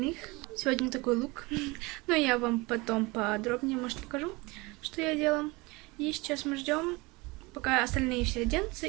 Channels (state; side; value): quieter; left; 24.4 dB